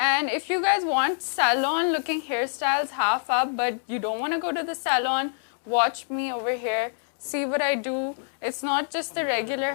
if you guys want salon looking hairstyles half up, but you don't want to go to the salon, watch me over here. See what I do. It's not just the regular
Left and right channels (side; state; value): right; silent; digital silence